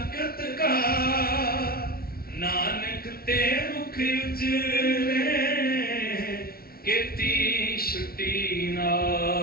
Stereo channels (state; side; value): late; right; 0.44 ms